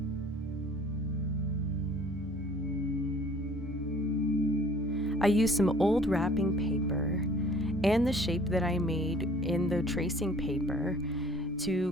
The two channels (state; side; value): normal; both; correlation 0.53